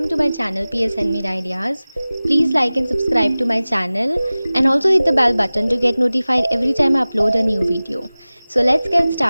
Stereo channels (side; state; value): both; inverted; correlation -0.98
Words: to my channel PS Handmade Ideas. Please like and subscribe to my channel and also hit the bell button to get notified every time I upload a new video. So let's get